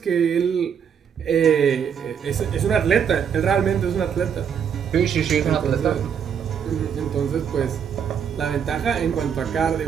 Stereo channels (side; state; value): left; quieter; 7.7 dB